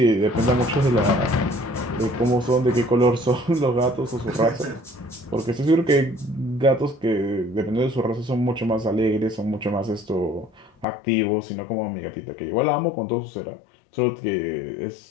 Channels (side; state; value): right; drops out; at 10.9 s